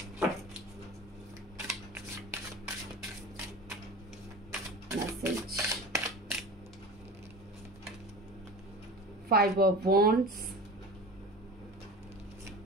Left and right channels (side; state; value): both; normal; correlation 0.34